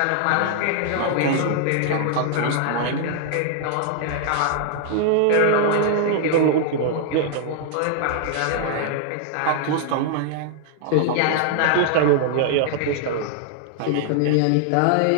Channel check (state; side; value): different; both; correlation 0.00